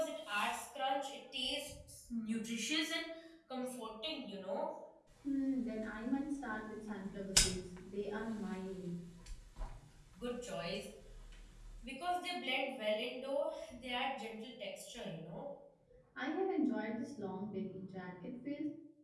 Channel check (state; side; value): identical; both; correlation 1.00